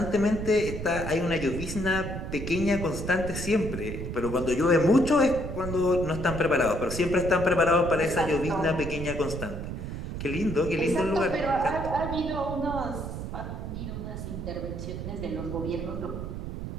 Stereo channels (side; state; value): right; noise; rumble, 6 dB below the sound